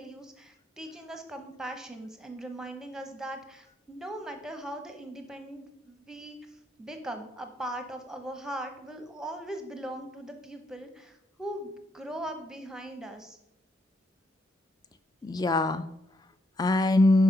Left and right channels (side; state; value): both; normal; correlation 0.77